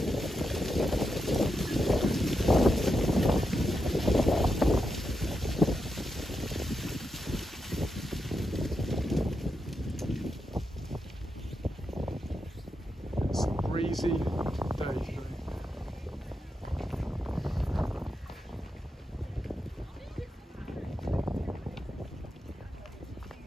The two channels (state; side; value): normal; both; correlation 0.86